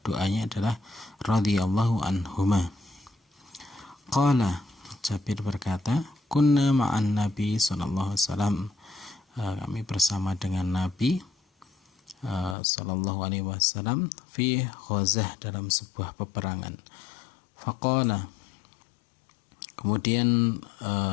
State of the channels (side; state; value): right; drops out; at 12.6 s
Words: doanya adalah radhiyallahu anhuma. Qala, Jabir berkata, kunna ma'an Nabi sallallahu alaihi wasallam, kami bersama dengan Nabi sallallahu alaihi wasallam fi ghazah, dalam sebuah peperangan. Faqala, kemudian